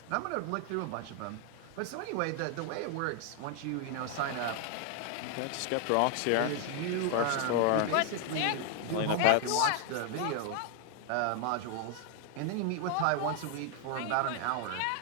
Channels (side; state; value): both; different; correlation 0.00